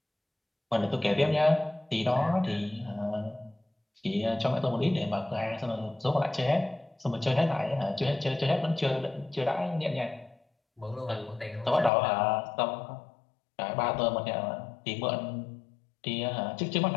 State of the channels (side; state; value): right; drops out; at 11.9 s